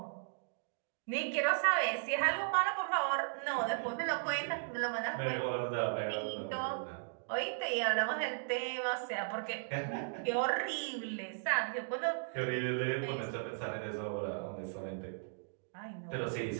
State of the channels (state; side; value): silent; left; digital silence